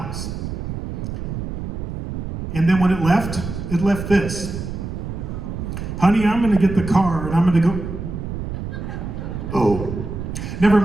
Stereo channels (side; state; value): right; noise; rumble, 6 dB below the sound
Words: And then when it left this. Honey, I'm gonna get the car and I'm gonna go, oh, never